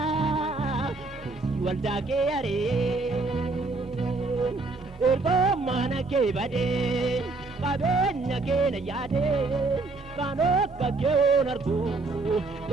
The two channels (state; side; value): quieter; left; 3.5 dB